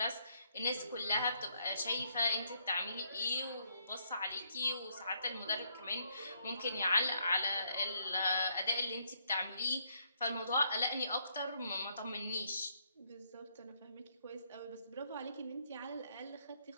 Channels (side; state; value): both; inverted; correlation -0.73